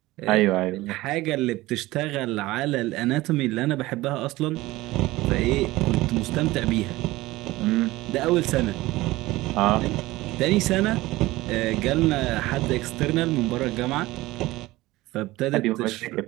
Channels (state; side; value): quieter; left; 18.8 dB